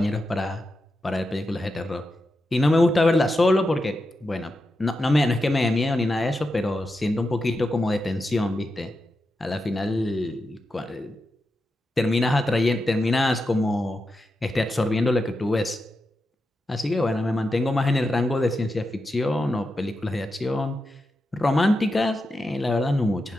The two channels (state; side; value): normal; both; correlation 0.88